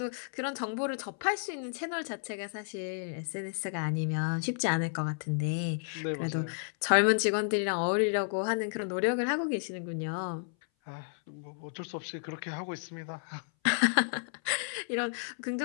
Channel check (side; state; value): right; silent; 56 dB below the other